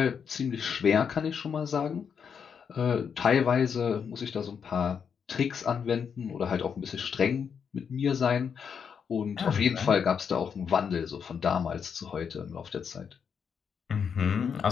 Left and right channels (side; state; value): right; quieter; 6.9 dB